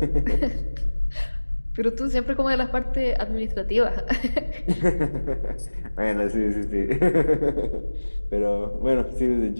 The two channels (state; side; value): inverted; both; correlation -1.00